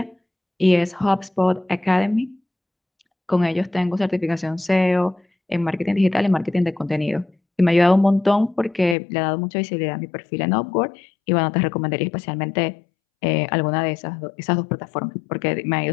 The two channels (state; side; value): drops out; right; at 9.0 s